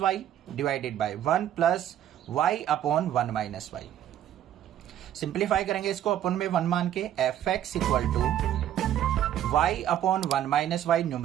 y divided by 1 plus y upon 1 minus y. Simplify करेंगे इसको अपन में 1 मान के, f x equal to y upon 1 minus y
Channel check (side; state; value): left; quieter; 11.0 dB